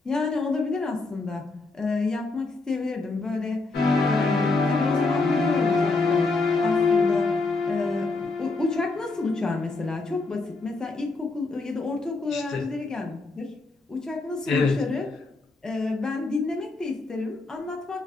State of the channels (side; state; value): right; quieter; 3.6 dB